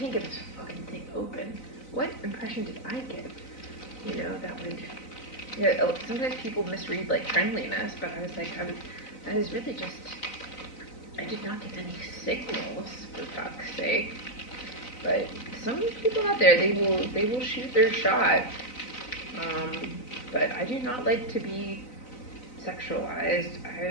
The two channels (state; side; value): late; right; 4.0 ms